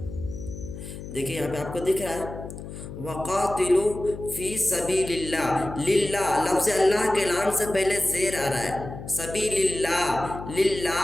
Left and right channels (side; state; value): left; noise; hum, 11 dB below the sound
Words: देखिए यहाँ पे आपको दिख रहा है वक़ातिलू फ़ी सबीलिल्लाह। लिल्लाह लफ्ज़ अल्लाह के नाम से पहले ज़ेर आ रहा है। सबीलिल्लाह,